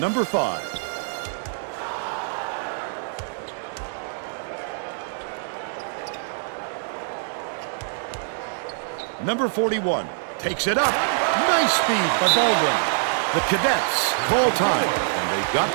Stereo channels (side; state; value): left; silent; digital silence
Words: 5. Number 41 takes it up. Nice speed by Baldwin. The Cadets call time, and they've got